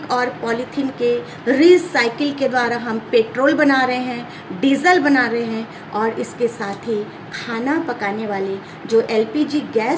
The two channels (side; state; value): both; identical; correlation 1.00